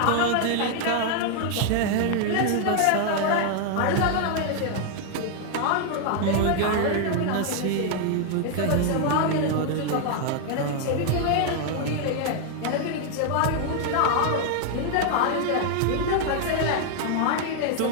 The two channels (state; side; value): different; both; correlation 0.00